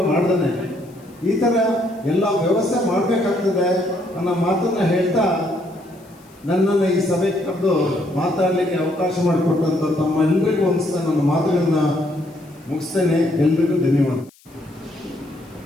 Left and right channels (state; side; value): noise; left; hiss, 29 dB below the sound